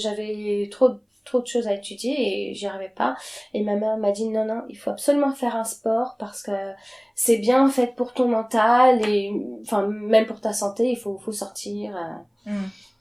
trop de choses à étudier et j'y arrivais pas. Et ma mère m'a dit non, il faut absolument faire un sport parce que c'est bien en fait pour ton mental et enfin même pour ta santé, il faut sortir.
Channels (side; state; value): both; identical; correlation 1.00